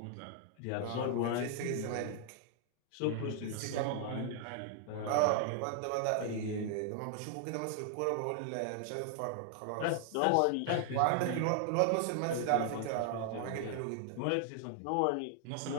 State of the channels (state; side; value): different; both; correlation 0.00